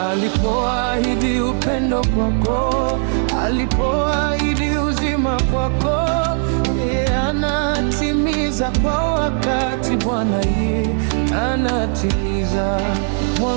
Alipoahidi upendo kwako, alipoahidi uzima kwako, yeye anatimiza kwa wakati. Bwana yeye anatimiza.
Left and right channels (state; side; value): silent; left; 64 dB below the other